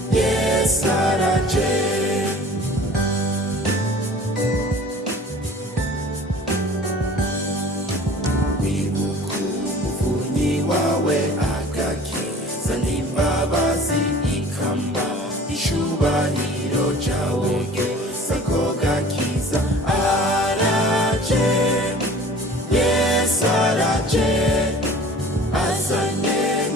Yesu araje wawe agakiza n'imbabazi ikamba icyubahiro cyawe gesa ko gakiza araje Yesu araje azanye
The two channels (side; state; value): both; normal; correlation 0.45